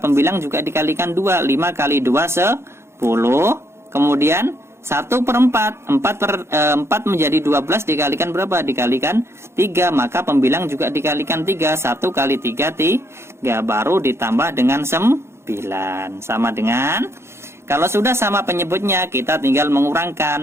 juga dikalikan 2. 5 kali 2 10. Kemudian 1/4. 4 menjadi 12 dikalikan berapa? Dikalikan 3, maka pembilang juga dikalikan 3. 1 kali 3 3, baru ditambah dengan 9. Sama dengan, kalau sudah sama penyebutnya, kita tinggal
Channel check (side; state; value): left; late; 0.13 ms